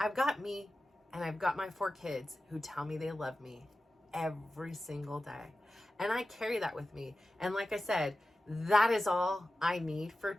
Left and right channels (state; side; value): normal; both; correlation 0.94